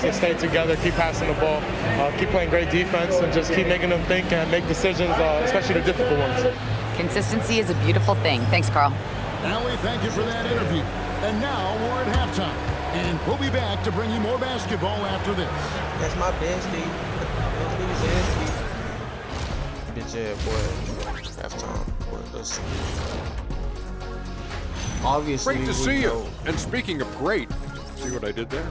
Just stay together, keep passing the ball, keep playing great defense, and just keep making them think and make decisions, especially the difficult ones. Consistency is a beautiful thing. Thanks, Carl. Allie, thank you for that interview. And now we're at halftime. And we'll be back to bring you more basketball after this. That's my bestie. Bitch ass boy. Halftime. Let's see. Obviously, Great to see you. And speaking of great, see what I did there?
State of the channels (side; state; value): both; identical; correlation 1.00